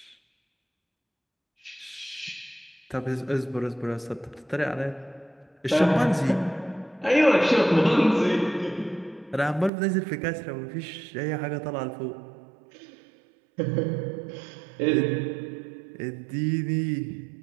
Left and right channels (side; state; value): left; drops out; at 9.7 s